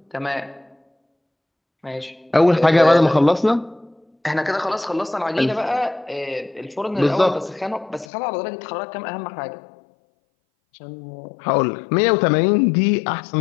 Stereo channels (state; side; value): drops out; right; at 8.1 s